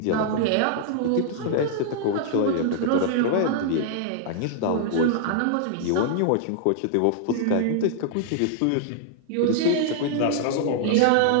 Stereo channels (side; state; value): both; different; correlation -0.01